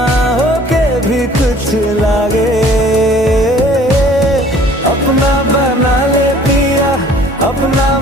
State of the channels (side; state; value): both; normal; correlation 0.52